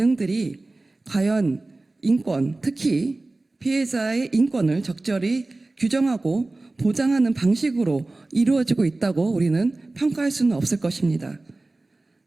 과연 인권, 특히 피해자의 인권을 적절히 규정하고 보장하는 방식으로 이루어지고 있다고 우리는 평가할 수는 없을 것입니다.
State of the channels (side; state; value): left; quieter; 3.0 dB